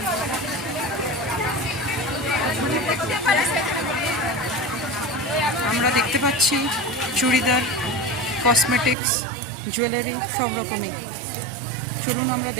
আমরা দেখতে পাচ্ছি চুড়িদার, কসমেটিক্স, জুয়েলারি সব রকমই। চলুন আমরা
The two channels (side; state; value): left; drops out; at 9.0 s